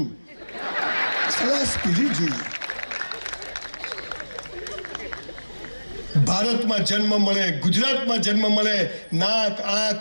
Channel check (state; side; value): inverted; both; correlation -1.00